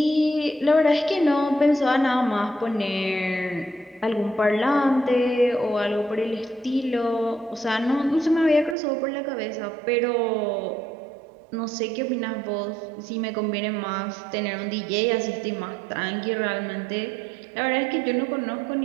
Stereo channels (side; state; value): left; drops out; at 8.8 s